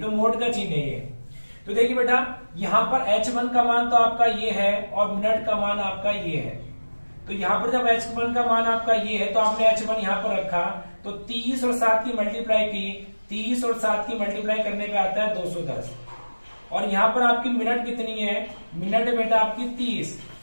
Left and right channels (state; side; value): inverted; both; correlation -1.00